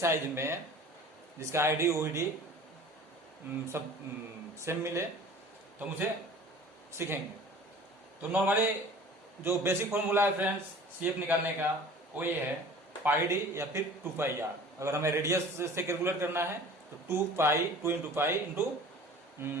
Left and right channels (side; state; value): both; normal; correlation 0.44